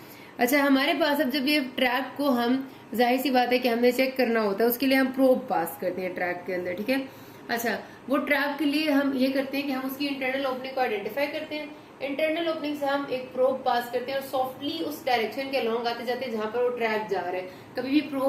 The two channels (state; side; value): identical; both; correlation 1.00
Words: अच्छा, हमारे पास अब जब ये ट्रैक को हम, जाहिर सी बात है कि हमने चेक करना होता है, उसके लिए हम प्रोब पास करते हैं ट्रैक के अंदर, ठीक है। अच्छा, वो ट्रैक के लिए हम ये करते हैं कि हम उसकी इंटरनल ओपनिंग को आइडेंटिफाई करते हैं। इंटरनल ओपनिंग से हम एक प्रोब पास करते हैं और सॉफ्टली उस डायरेक्शन के अलोंग आते जाते जहां पर वो ट्रैक जा रहा है। कभी भी